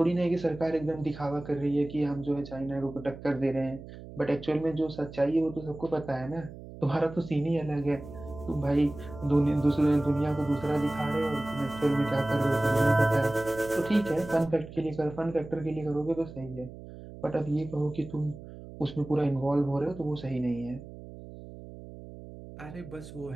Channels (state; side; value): noise; right; hum, 14 dB below the sound